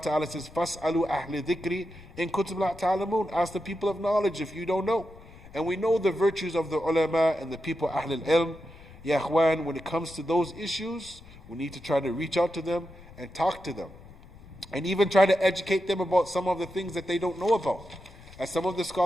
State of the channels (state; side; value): noise; left; rumble, 20 dB below the sound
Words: says, فَاسْأَلُوا أَهْلِ ذِكْرِ إِن كُنتُمْ لَا تَعْلَمُونَ. Ask the people of knowledge if you don't know. And we know the virtues of the ulama and the people Ahl al-Ilm. Ya Ikhwan, when it comes to those issues, we need to try to reach out to them and talk to them. And even try to educate them about some of the things that they don't know about. As some of the